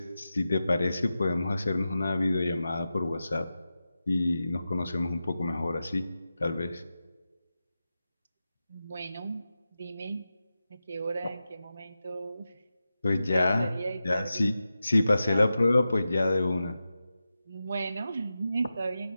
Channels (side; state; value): both; inverted; correlation -0.92